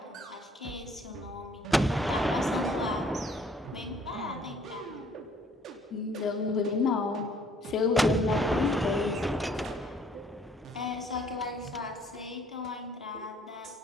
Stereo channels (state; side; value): normal; both; correlation 0.60